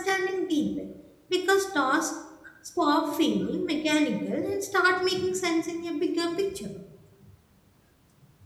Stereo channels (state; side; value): identical; both; correlation 1.00